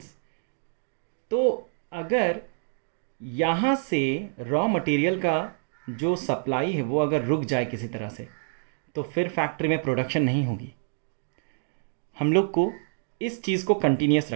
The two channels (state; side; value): silent; left; 59 dB below the other